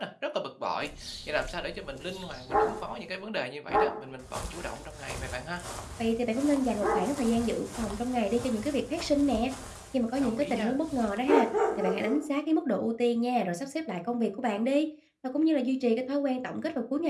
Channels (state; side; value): identical; both; correlation 1.00